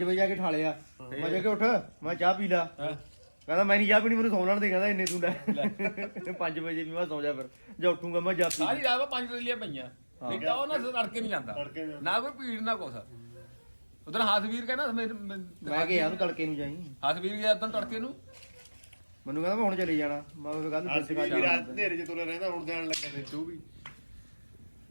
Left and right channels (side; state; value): both; inverted; correlation -1.00